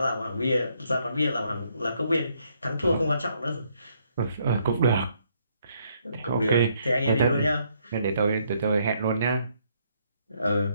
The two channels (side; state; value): both; inverted; correlation -0.71